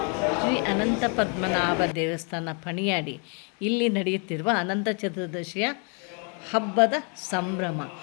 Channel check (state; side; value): quieter; right; 37.3 dB